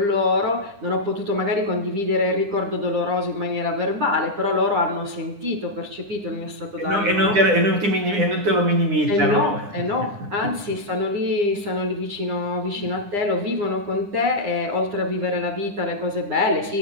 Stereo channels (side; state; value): left; late; 9.9 ms